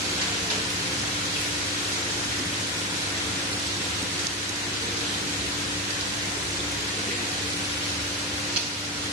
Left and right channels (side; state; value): both; normal; correlation 0.13